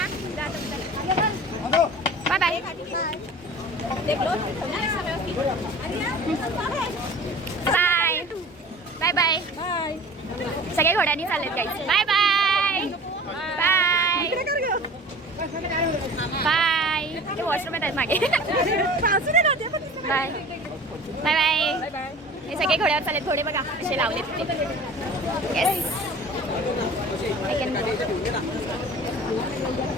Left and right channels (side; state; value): both; normal; correlation 0.41